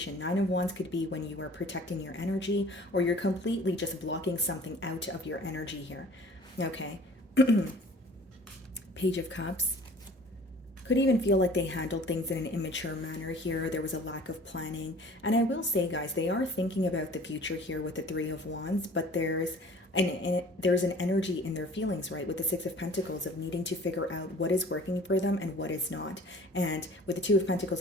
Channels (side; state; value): both; normal; correlation 0.48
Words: Nine of Wands could be when you are protecting your energy, or you're completely just blocking something out of your energy here. Okay. Page of Cups. Could even feel like they handled things in an immature manner here. There was a lack of planning. And I will say, guys, they are thinking about the future here with the Three of Wands, but there's an energy in their feelings, right, with the Six of Pentacles, of needing to figure out what is working for them and what is not. And with the Two of Pentacles